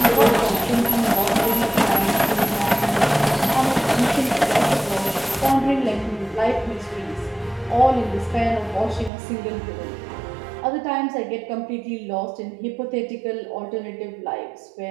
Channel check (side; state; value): left; drops out; at 9.1 s